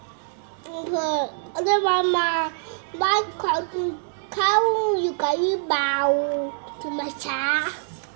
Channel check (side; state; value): left; silent; 62 dB below the other